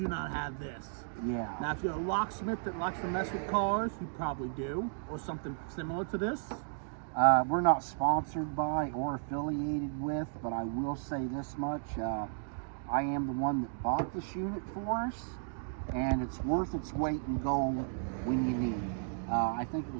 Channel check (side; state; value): left; silent; digital silence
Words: not have this. Yeah. Now, if you're a locksmith that likes to mess with cars, you probably do, or something similar to this. We're not sponsored by or affiliated with, but I will say this much. I am the one that bought this unit for us, and it's worth its weight in gold when you need it. I think it